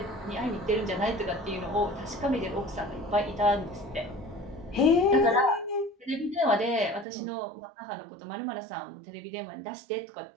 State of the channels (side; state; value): left; drops out; at 7.1 s